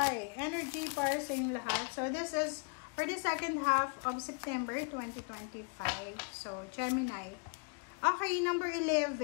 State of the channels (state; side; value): quieter; right; 36.0 dB